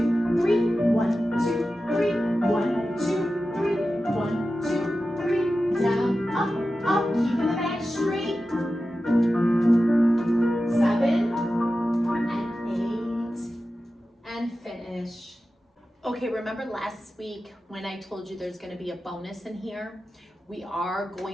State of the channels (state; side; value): normal; both; correlation 0.93